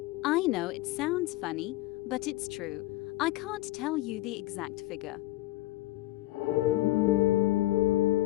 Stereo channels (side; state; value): right; quieter; 17.1 dB